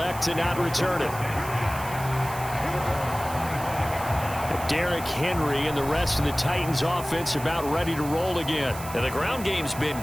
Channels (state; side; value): noise; right; hiss, 13 dB below the sound